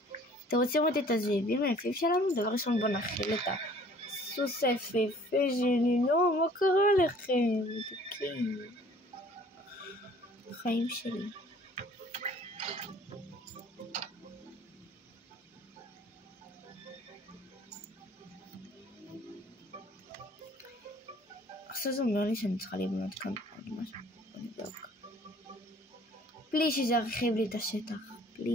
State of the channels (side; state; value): both; normal; correlation 0.54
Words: אתם רוצים לראות את הזאבים היפים שלנו? דבר ראשון בוא נכיל את הסוס היפהפה שלי. לא, מה קרה לכם? מתוקים. החיים שלי. עכשיו זה אומר לי שאני צריכה לבנות כאן עוד משהו. בוא נבדוק. בלי שזה ירחיב לי את השטח.